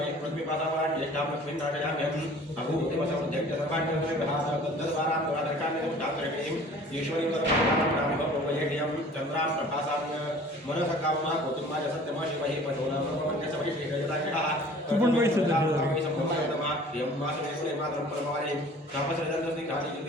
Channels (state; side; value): normal; both; correlation 0.48